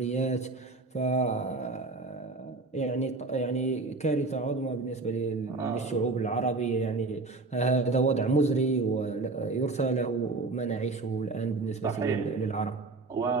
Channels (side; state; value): left; quieter; 3.6 dB